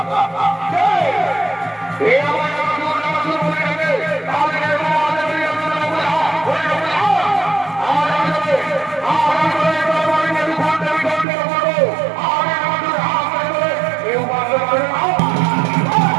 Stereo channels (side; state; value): left; drops out; at 11.2 s